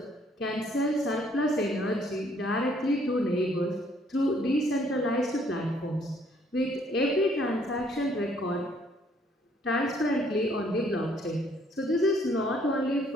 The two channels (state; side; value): normal; both; correlation 0.64